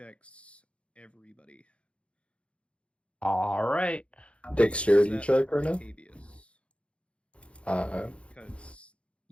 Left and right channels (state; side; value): late; right; 0.060 ms